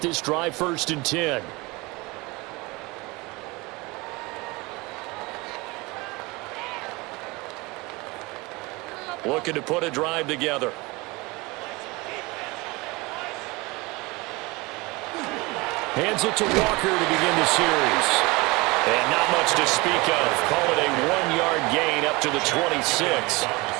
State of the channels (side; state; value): left; quieter; 24.1 dB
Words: drive 1st and 10. Looking to put a drive together. Hands it to Walker to begin the series. And not much to speak of. Call it a 1-yard gain up to the 26.